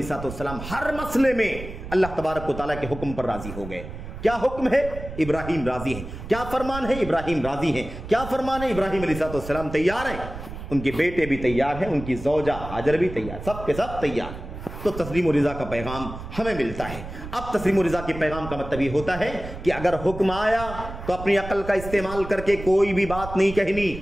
السلام ہر مسئلے میں اللہ تبارک و تعالیٰ کے حکم پر راضی ہو گئے۔ کیا حکم ہے؟ ابراہیم راضی ہیں. کیا فرمان ہے؟ ابراہیم راضی ہیں. کیا فرمان ہے؟ ابراہیم علیہ السلام تیار ہیں، ان کے بیٹے بھی تیار ہیں، ان کی زوجہ ہاجر بھی تیار، سب کے سب تیار. تو تسلیم و رضا کا پیغام ہمیں ملتا ہے. اب تسلیم و رضا کے پیغام کا مطلب یہ ہوتا ہے کہ اگر حکم آیا تو اپنی عقل کا استعمال کر کے کوئی بھی بات نہیں کہنی،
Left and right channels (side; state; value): right; noise; rumble, 11 dB below the sound